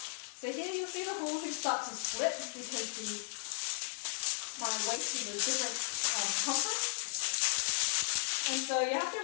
So here you'll see the hula hoop start to split because my waist is a different circumference. And so you have to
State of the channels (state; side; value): silent; right; digital silence